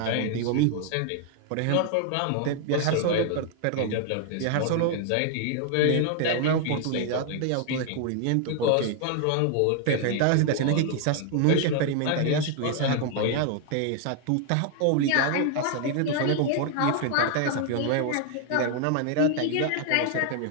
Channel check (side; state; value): both; different; correlation 0.00